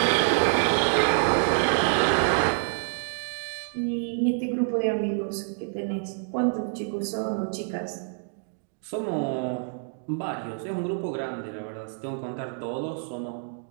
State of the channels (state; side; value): silent; left; digital silence